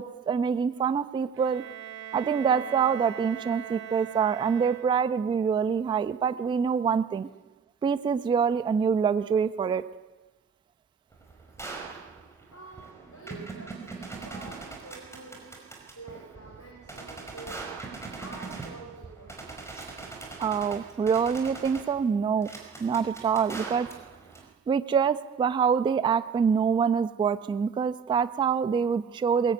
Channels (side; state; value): left; quieter; 6.3 dB